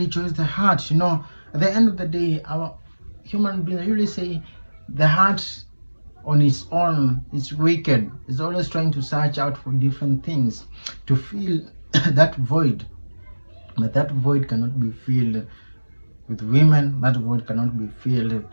the heart. You know, at the end of the day, our human beings usually say the heart on its own is wicked. It's always trying to search out for different things to fill that void. But that void cannot be filled with women. That void cannot be filled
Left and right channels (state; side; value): inverted; both; correlation -1.00